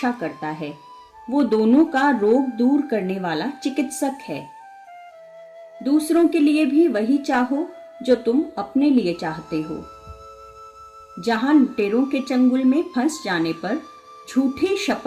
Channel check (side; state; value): both; identical; correlation 1.00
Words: करता है। वो दोनों का रोग दूर करने वाला चिकित्सक है। दूसरों के लिए भी वही चाहो जो तुम अपने लिए चाहते हो। जहां लुटेरों के चंगुल में फंस जाने पर झूठी